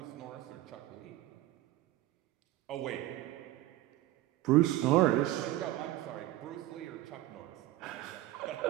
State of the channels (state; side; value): quieter; left; 15.8 dB